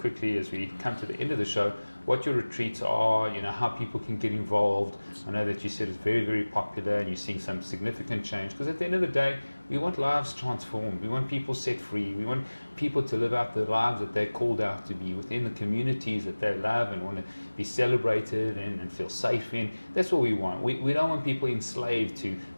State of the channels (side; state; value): both; inverted; correlation -1.00